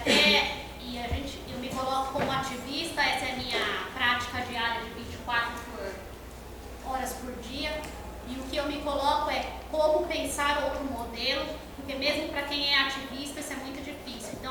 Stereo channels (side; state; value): both; identical; correlation 1.00